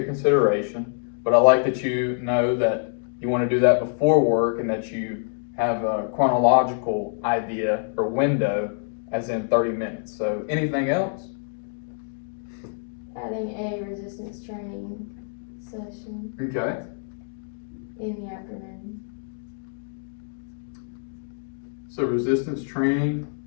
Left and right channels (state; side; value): silent; right; digital silence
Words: consideration, but I like that you know that you want to do that before work and that you have a chronological idea or window as in 30 minutes. So anything else? Adding a resistance training session Okay. in the afternoon. So resistance training.